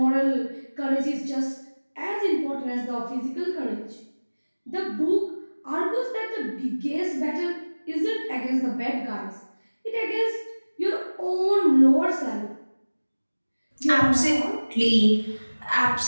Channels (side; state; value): both; inverted; correlation -1.00